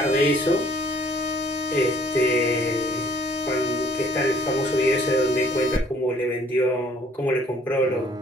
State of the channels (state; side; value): normal; both; correlation 0.59